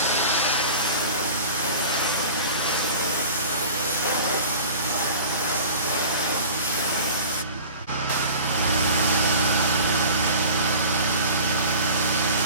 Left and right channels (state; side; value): inverted; both; correlation -0.40